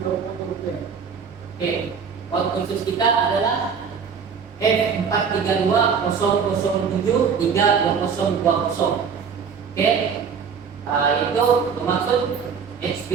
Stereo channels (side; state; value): left; quieter; 6.4 dB